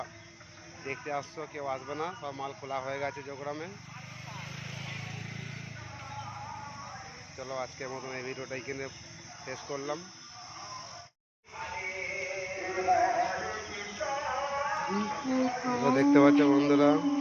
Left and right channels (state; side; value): identical; both; correlation 1.00